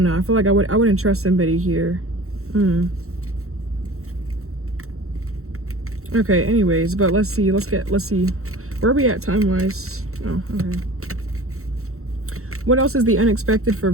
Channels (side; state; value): left; late; 0.63 ms